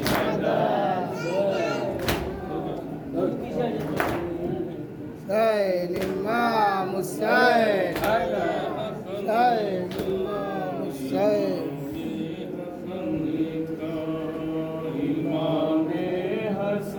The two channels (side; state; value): both; identical; correlation 1.00